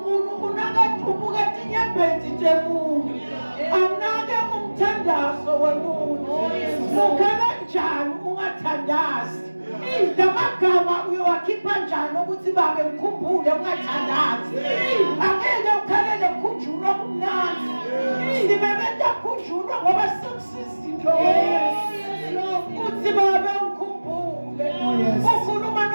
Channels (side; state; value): both; inverted; correlation -1.00